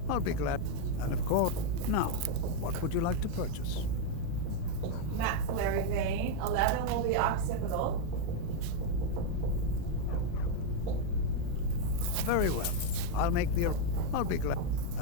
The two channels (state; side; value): different; both; correlation 0.01